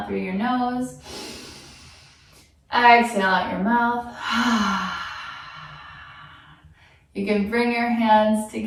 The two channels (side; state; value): both; identical; correlation 1.00